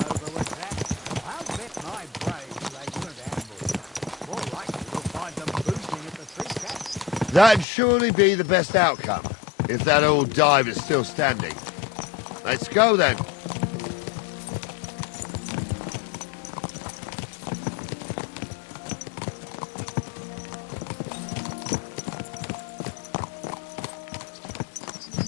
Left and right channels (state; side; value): drops out; right; at 7.7 s